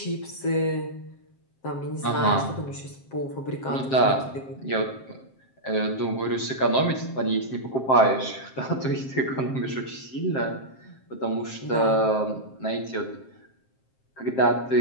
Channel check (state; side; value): late; right; 7.6 ms